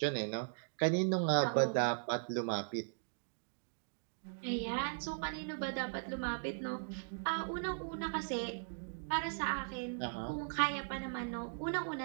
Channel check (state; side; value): silent; left; digital silence